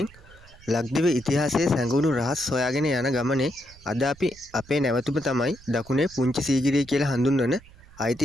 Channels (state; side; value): noise; right; rumble, 23 dB below the sound